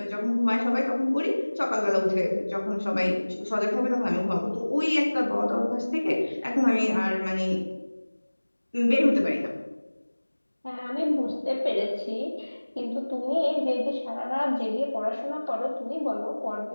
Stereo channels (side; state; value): both; inverted; correlation -1.00